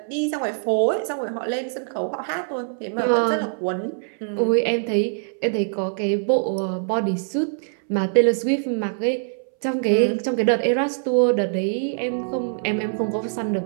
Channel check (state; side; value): silent; left; 63 dB below the other